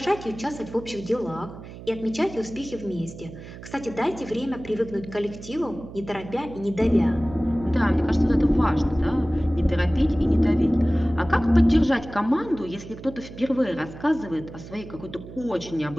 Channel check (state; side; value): noise; right; hum, 14 dB below the sound